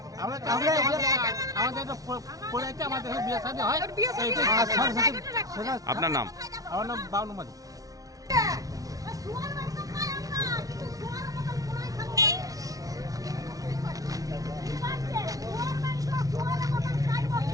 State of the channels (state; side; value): late; left; 0.18 ms